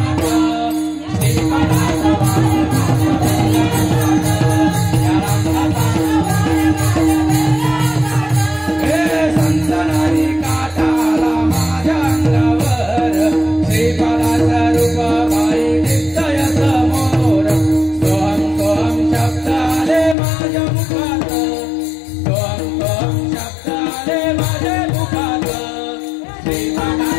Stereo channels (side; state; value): right; drops out; at 20.2 s